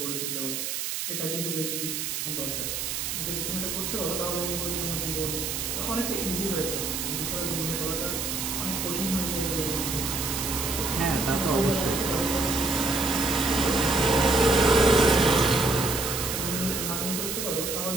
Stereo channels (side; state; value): right; noise; hiss, 3 dB below the sound